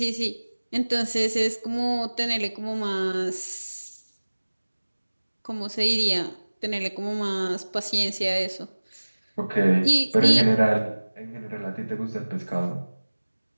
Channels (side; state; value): both; inverted; correlation -1.00